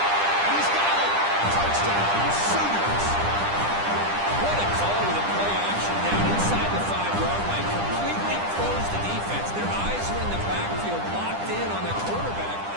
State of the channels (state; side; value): late; left; 10 ms